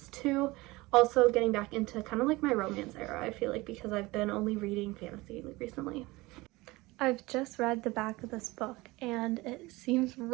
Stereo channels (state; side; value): quieter; left; 21.5 dB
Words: too. Also getting back into kind of like my romance era, I feel like, because I've been only reading fantasy recently. I've just read the back of this book and it seems